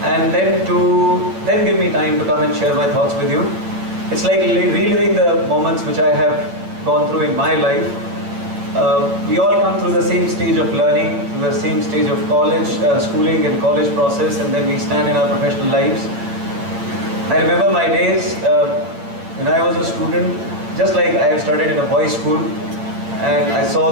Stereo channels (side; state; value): left; late; 8.8 ms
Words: and then give me time to come and share my thoughts with you. It's like reliving the moments which I have gone through in my life. We all come through the same stage of learning, through the same stage of college, schooling and college process, and then we stand in our professional lives. I remember my days when I was a student, just like I have studied in a boys' school, and I saw